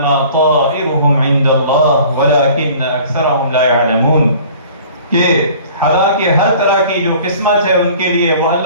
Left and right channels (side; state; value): both; inverted; correlation -0.48